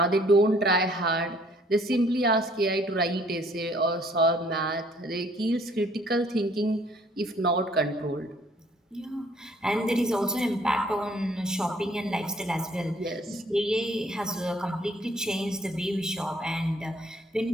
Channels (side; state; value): both; normal; correlation 0.60